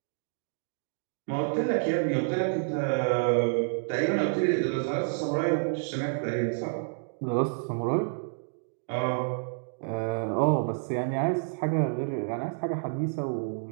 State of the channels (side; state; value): left; silent; digital silence